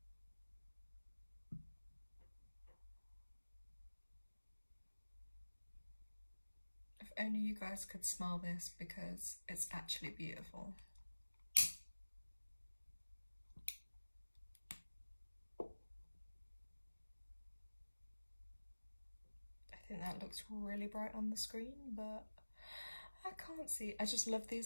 If only you guys could smell this, because it's actually beautiful. I think that looks really bright on the screen, but I can't see. I just love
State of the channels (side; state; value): both; inverted; correlation -1.00